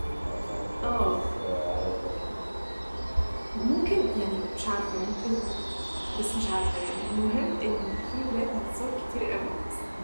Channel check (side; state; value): both; inverted; correlation -1.00